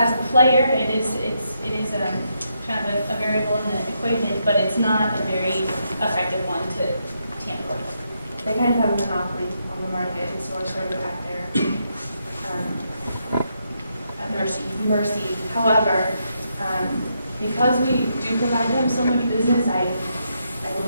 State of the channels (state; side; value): inverted; both; correlation -0.80